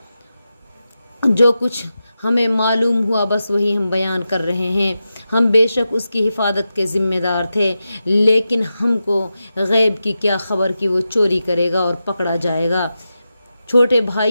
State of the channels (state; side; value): inverted; both; correlation -0.91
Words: جو کچھ ہمیں معلوم ہوا بس وہی ہم بیان کر رہے ہیں۔ ہم بے شک اس کی حفاظت کے ذمہ دار تھے، لیکن ہم کو غیب کی کیا خبر کہ وہ چوری کرے گا اور پکڑا جائے گا۔ چھوٹے